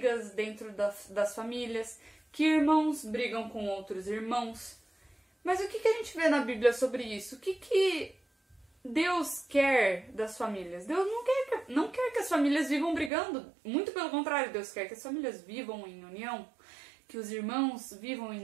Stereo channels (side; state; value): left; drops out; at 13.1 s